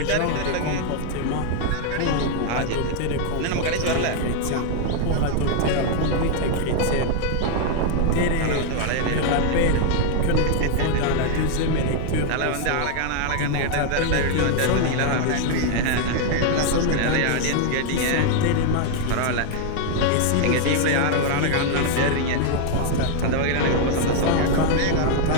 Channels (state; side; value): different; both; correlation 0.00